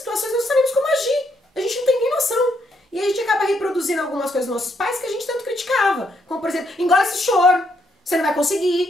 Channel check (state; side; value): normal; both; correlation 0.75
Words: nós não sabemos como agir. A gente não tem nem noção. E a gente acaba reproduzindo algumas coisas dos nossos pais que a gente tanto criticava. Como, por exemplo, engole esse choro, você não vai